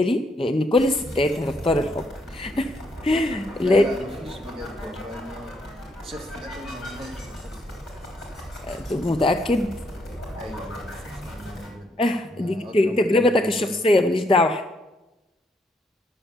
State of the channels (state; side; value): normal; both; correlation 0.74